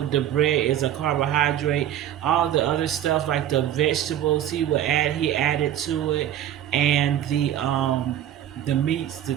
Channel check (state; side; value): quieter; left; 11.3 dB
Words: the bread is a carbohydrate, all the other stuff like the vegetables he added to it, and the meats,